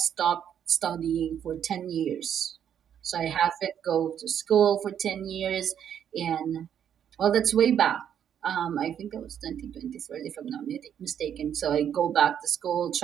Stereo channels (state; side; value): quieter; left; 9.1 dB